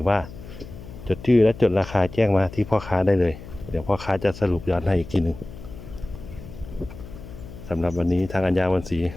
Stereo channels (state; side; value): noise; left; hum, 14 dB below the sound